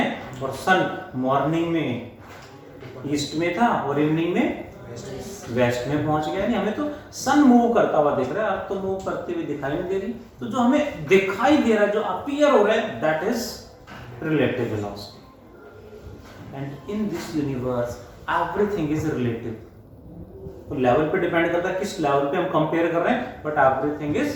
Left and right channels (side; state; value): both; identical; correlation 1.00